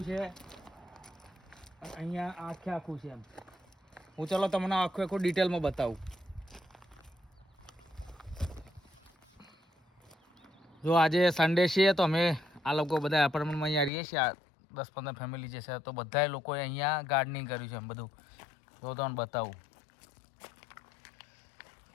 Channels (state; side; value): drops out; right; at 13.9 s